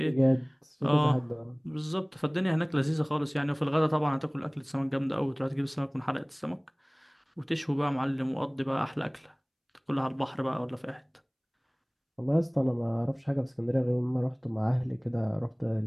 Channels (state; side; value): identical; both; correlation 1.00